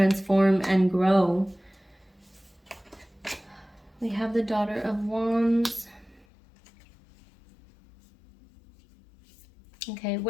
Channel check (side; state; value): right; drops out; at 6.2 s